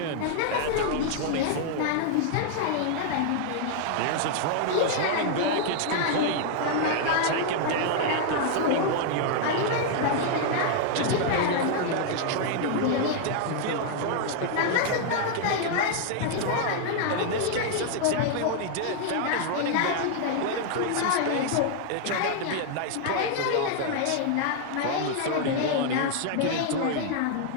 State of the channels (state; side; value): different; both; correlation 0.00